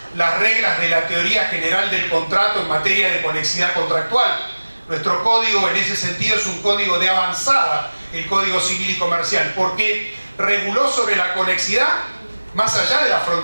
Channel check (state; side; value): inverted; both; correlation -1.00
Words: las reglas de la teoría general del contrato en materia de conexidad contractual. Nuestro código en ese sentido es un código de avanzada, el Código Civil y Comercial, porque reguló sobre la conexidad más allá de las